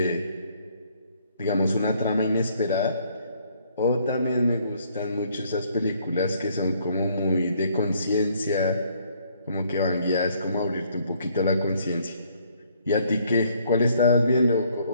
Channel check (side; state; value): both; inverted; correlation -0.65